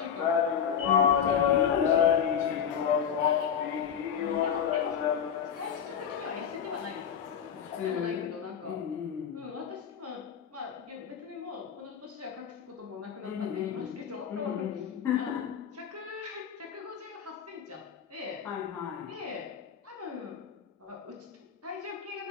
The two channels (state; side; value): quieter; right; 8.0 dB